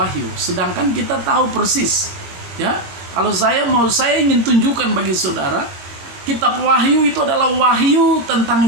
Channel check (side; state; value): left; late; 22 ms